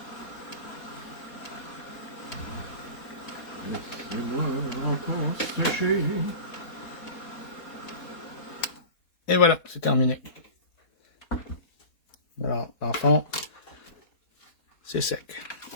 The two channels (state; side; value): late; right; 4.2 ms